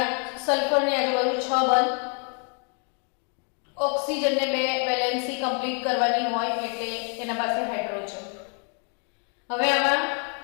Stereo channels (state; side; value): quieter; right; 39.8 dB